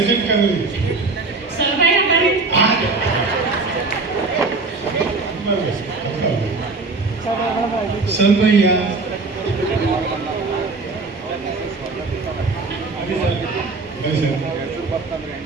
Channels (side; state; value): left; quieter; 3.7 dB